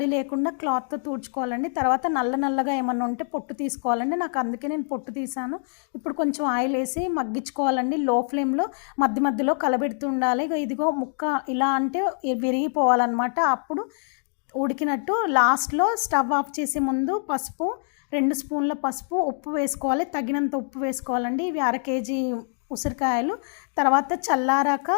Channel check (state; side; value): silent; right; digital silence